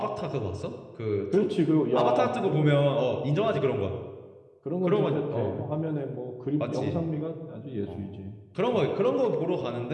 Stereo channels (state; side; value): identical; both; correlation 1.00